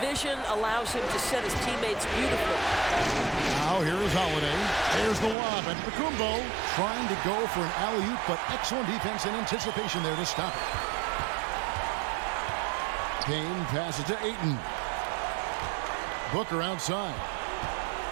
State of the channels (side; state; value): left; drops out; at 5.4 s